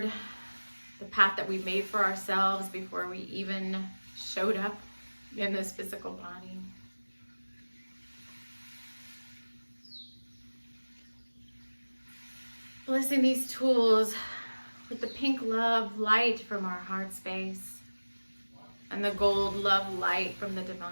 the path that we made for ourselves before we even showed up in this physical body. Blessing these tools with the pink love light from our heart space, and the gold love light from the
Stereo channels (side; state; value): both; inverted; correlation -1.00